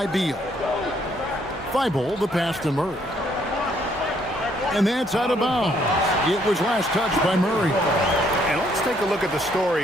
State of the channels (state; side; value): normal; both; correlation 0.68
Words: Beal. Thibault, the pass to Murray. And that's out of bounds. It was last touched by Murray. And let's take a look at the